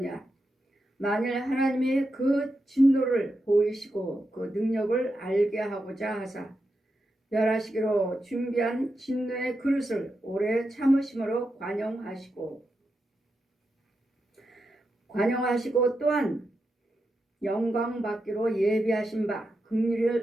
만일 하나님이 그 진노를 보이시고 그 능력을 알게 하고자 하사 멸하시기로 준비한 진노의 그릇을 오래 참으심으로 관용하시고 또한 영광 받기로 예비하신 바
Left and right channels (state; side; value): normal; both; correlation 0.87